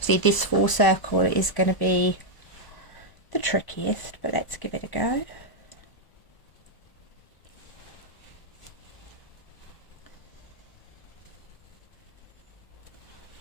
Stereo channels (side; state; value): right; late; 1.0 ms